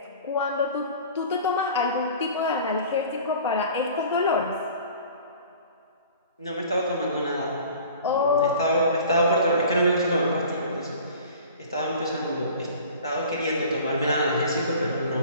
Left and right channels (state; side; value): inverted; both; correlation -0.44